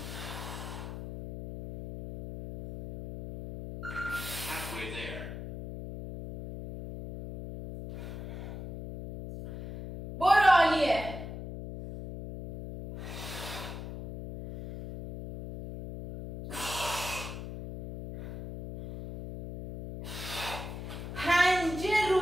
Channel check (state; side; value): noise; left; hum, 8 dB below the sound